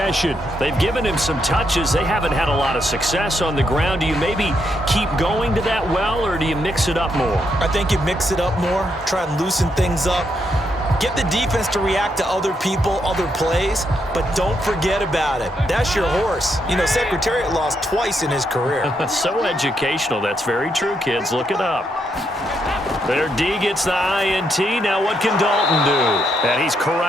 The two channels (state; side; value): normal; both; correlation 0.78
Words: They've given him some touches. They haven't had a lot of success on the ground. Do you maybe keep going to that well, or do you mix it up more? I think you mix it up more, try and loosen things up. Get the defense to react to other people, other plays, but don't forget about it. That's your horse. You know, Secretariat lost twice in his career. So educational. That's very true, kids. Look it up. Their D gets the INT. Now what can Dalton do? And he's